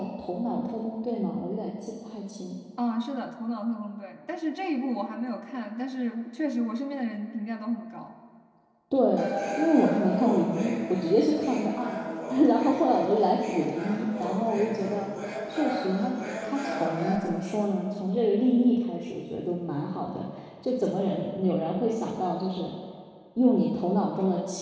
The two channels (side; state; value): both; identical; correlation 1.00